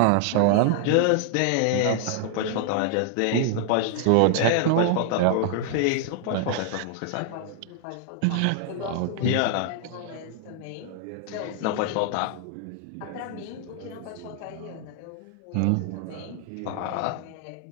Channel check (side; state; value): both; different; correlation 0.00